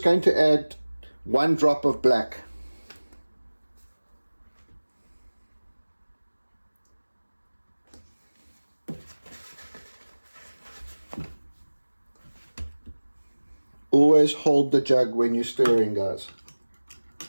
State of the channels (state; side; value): inverted; both; correlation -1.00